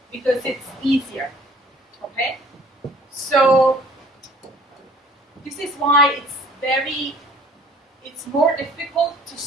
because it's easier. Okay? So this is why it's more difficult to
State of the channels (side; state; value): both; normal; correlation 0.53